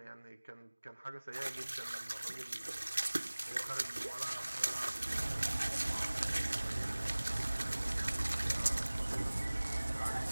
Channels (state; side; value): inverted; both; correlation -1.00